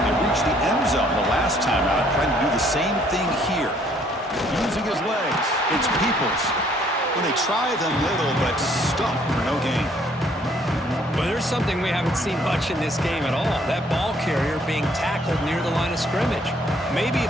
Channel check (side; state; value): both; normal; correlation 0.63